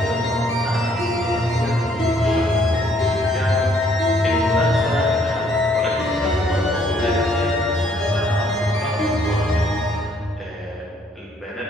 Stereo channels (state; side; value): normal; both; correlation 0.66